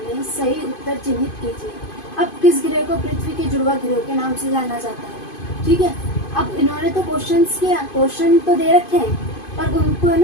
हैं। सही उत्तर चिन्हित कीजिए। अब किस ग्रह को पृथ्वी के जुड़वा ग्रह के नाम से जाना जाता है? ठीक है। अब इन्होंने तो क्वेश्चन तो दे रखे हैं, पर उनको है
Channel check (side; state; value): right; late; 2.5 ms